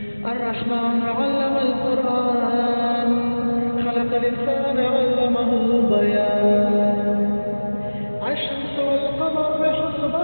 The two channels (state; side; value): inverted; both; correlation -1.00